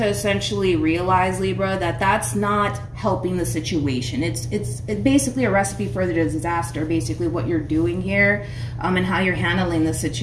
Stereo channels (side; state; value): both; identical; correlation 1.00